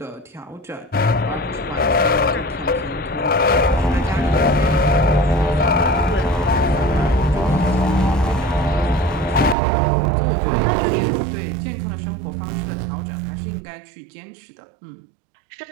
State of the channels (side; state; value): left; drops out; at 9.6 s